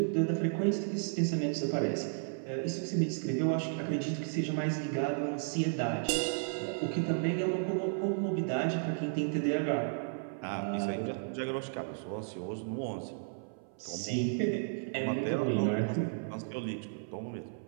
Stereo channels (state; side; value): silent; left; 55 dB below the other